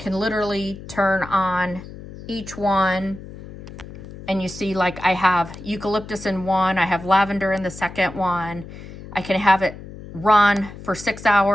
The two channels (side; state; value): left; noise; hum, 14 dB below the sound